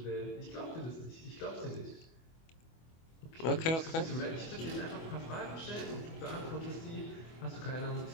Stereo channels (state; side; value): late; right; 24 ms